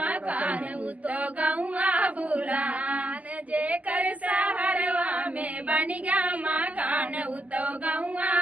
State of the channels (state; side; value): late; left; 0.074 ms